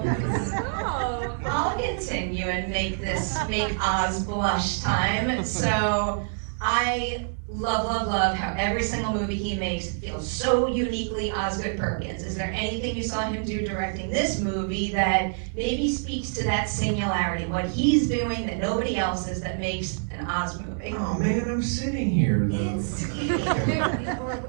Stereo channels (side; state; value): left; silent; 59 dB below the other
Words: I'll continue and make Oz blush time. So, I love how every single movie he makes feels so uniquely Osgood Perkins. Is there anything you saw him do directing this movie that maybe speaks to that singularity, what he's doing that nobody else is, that makes an Oz movie? Oh man, I'm sitting here though. It's,